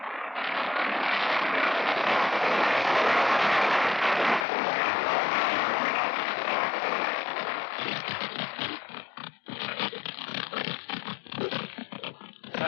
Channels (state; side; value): drops out; right; at 4.5 s